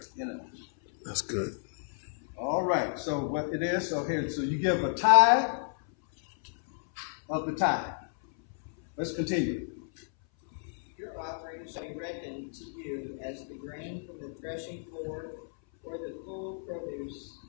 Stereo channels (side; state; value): right; silent; 57 dB below the other